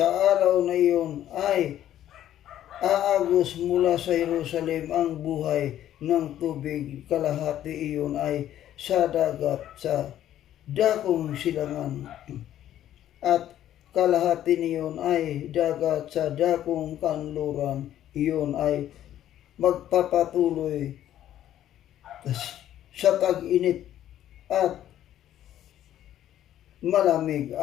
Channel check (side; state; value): right; quieter; 11.9 dB